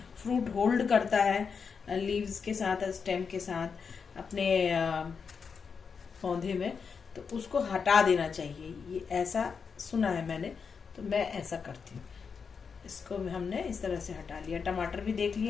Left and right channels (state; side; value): quieter; right; 5.8 dB